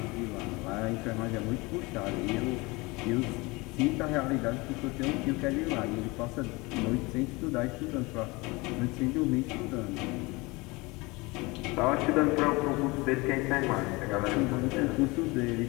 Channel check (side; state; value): right; quieter; 24.3 dB